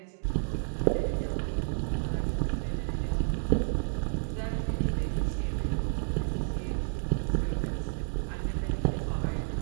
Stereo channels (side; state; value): left; silent; digital silence